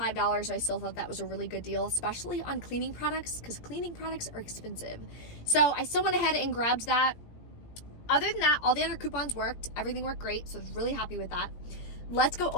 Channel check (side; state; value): right; late; 18 ms